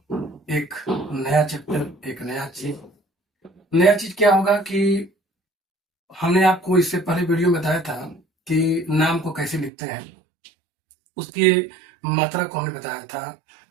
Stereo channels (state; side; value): drops out; left; at 9.7 s